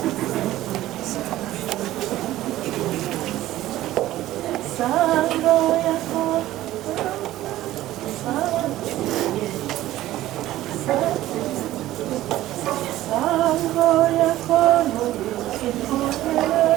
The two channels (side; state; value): left; quieter; 15.0 dB